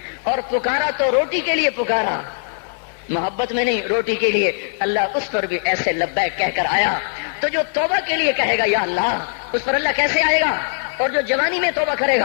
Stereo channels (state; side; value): silent; right; 62 dB below the other